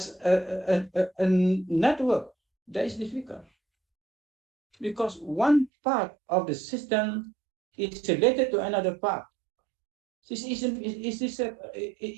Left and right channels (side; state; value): left; drops out; at 5.7 s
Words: a network, that is difficult. Because one part of the system is related to another part. It's